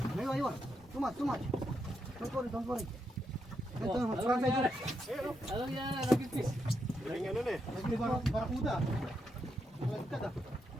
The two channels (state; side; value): normal; both; correlation 0.81